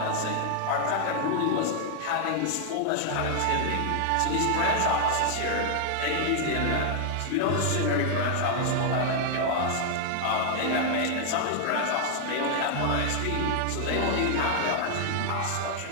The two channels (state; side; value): different; both; correlation 0.00